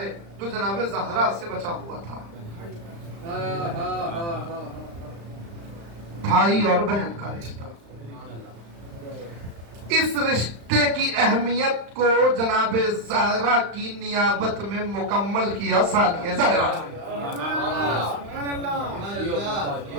جو جناب زہرا سے بچا ہوا تھا، بھائی اور بہن کا رشتہ. اس رشتے کی اہمیت کو جناب زہرا کی نیابت میں مکمل کیا ثانیہ زہرا.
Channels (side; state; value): left; late; 35 ms